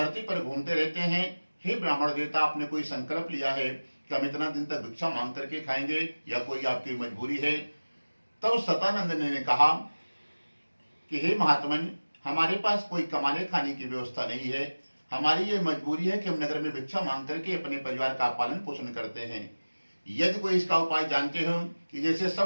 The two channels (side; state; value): both; inverted; correlation -1.00